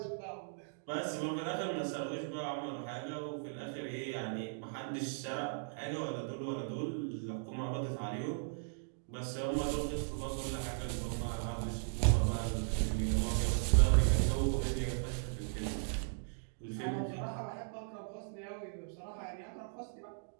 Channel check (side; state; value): left; silent; digital silence